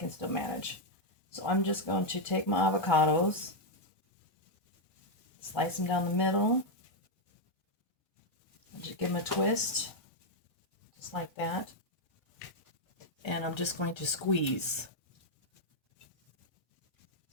still manage. So I'm just going to take my avocados, slice them down the middle, and just give them a twist. Just like that. And I'm just going to squeeze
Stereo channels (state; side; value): late; right; 1.1 ms